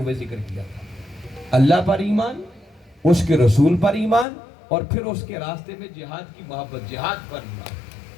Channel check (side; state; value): right; drops out; at 4.2 s